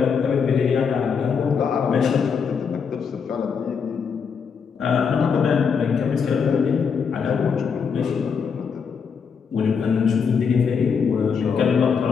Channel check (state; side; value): quieter; right; 6.2 dB